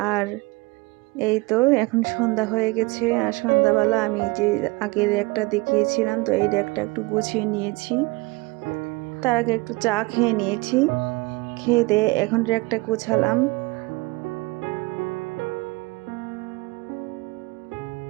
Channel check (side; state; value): left; quieter; 24.3 dB